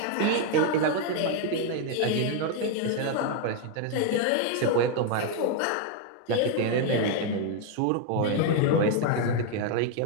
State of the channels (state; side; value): different; both; correlation 0.01